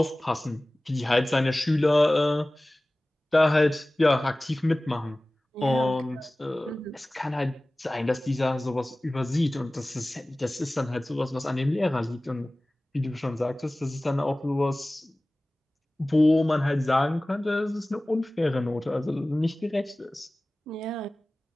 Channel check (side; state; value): both; normal; correlation 0.98